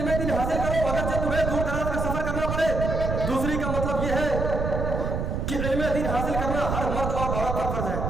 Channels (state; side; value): noise; right; rumble, 2 dB below the sound